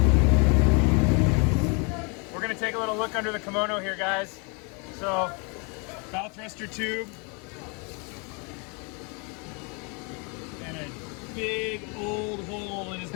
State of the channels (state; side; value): quieter; right; 33.6 dB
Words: we're going to take a little look under the kimono here, guys. So bow thruster tube and a big old hole in his